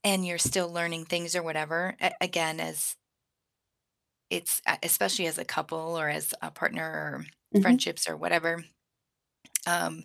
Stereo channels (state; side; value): identical; both; correlation 1.00